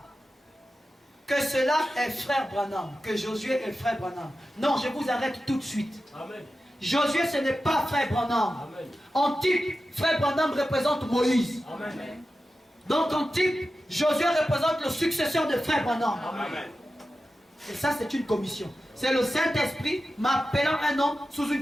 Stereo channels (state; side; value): normal; both; correlation 0.93